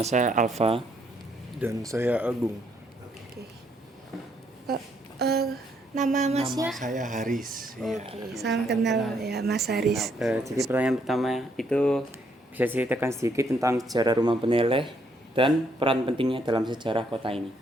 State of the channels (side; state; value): both; normal; correlation 0.71